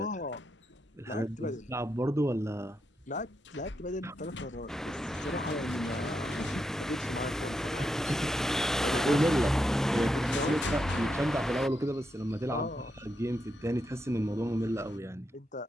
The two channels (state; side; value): normal; both; correlation 0.84